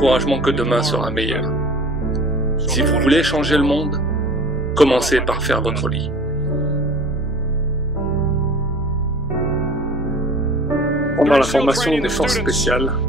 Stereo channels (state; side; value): normal; both; correlation 0.44